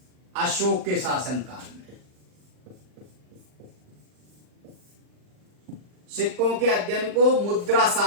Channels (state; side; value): late; left; 39 ms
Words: अशोक के शासनकाल में। सिक्कों के अध्ययन को मुद्रा